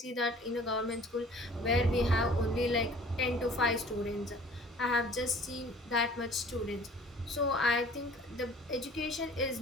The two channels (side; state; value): both; normal; correlation 0.50